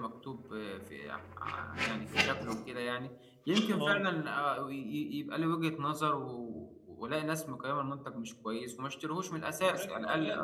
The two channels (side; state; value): both; identical; correlation 1.00